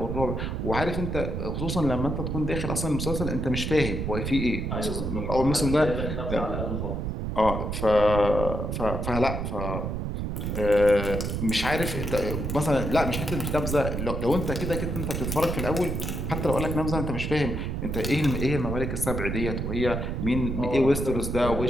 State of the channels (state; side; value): noise; right; rumble, 2 dB below the sound